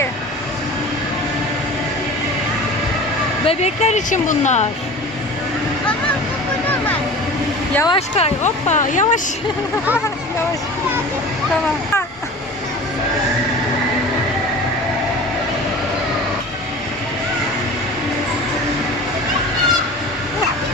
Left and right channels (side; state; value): both; normal; correlation 0.38